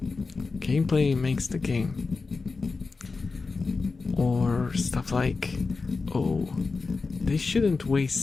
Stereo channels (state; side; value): quieter; right; 4.2 dB